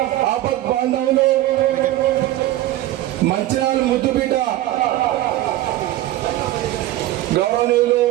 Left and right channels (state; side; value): quieter; left; 15.3 dB